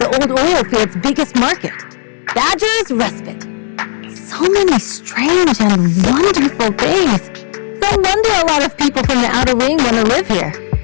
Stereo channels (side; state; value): right; silent; digital silence